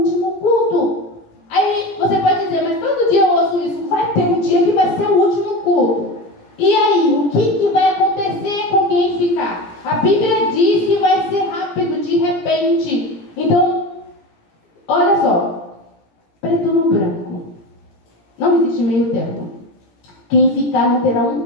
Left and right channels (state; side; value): late; right; 17 ms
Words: culto. Aí você pode dizer, mas todo dia eu ouço isso. Vai ter um dia que vai ser o último culto. E aí, o que vai acontecer com quem ficar? A Bíblia diz que vai ser rápido, de repente. Então, olha só. Preto no branco. Não existe meio termo. Quem ficar não terá